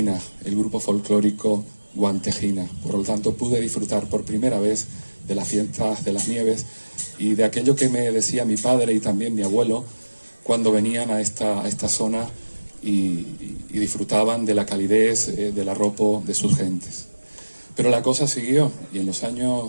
el grupo folclórico Guantejina. Por lo tanto, pude disfrutar por primera vez de las fiestas de las nieves y de aquello que me decía mi padre y también mi abuelo cuando venían a esta zona y disfrutaban de la calidez del arropo de sus gentes. Pero la cosa siguió y en los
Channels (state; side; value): inverted; both; correlation -1.00